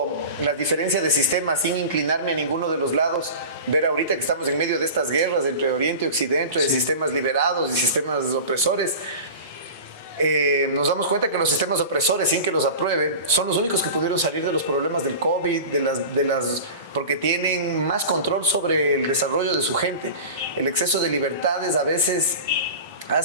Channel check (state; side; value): inverted; both; correlation -0.33